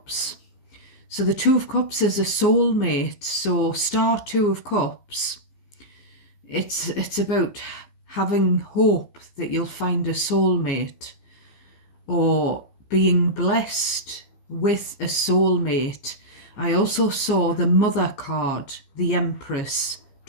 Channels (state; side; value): late; right; 15 ms